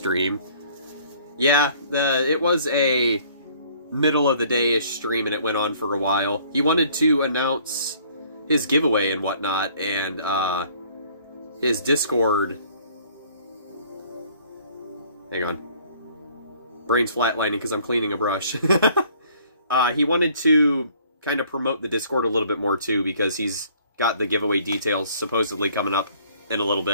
Yeah, it was a middle of the day-ish stream and it went on for a while. He wanted to announce his giveaway and whatnot, and his Discord... Hang on. Brain's flatlining because I'm cleaning a brush. He wanted to kind of promote the Discord a little bit more too, because he's got the giveaway details supposedly coming up in a little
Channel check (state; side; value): inverted; both; correlation -0.57